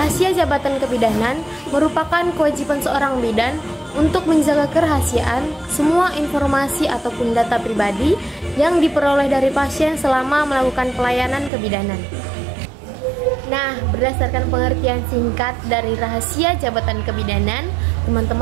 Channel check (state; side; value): drops out; left; at 11.5 s